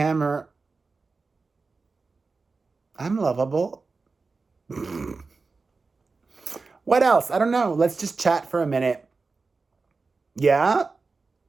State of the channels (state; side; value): quieter; left; 4.1 dB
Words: I'm lovable. What else? I don't know. Let's just chat for a minute. Yeah?